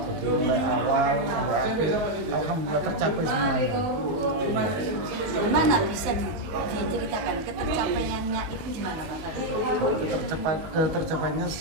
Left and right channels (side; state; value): left; late; 19 ms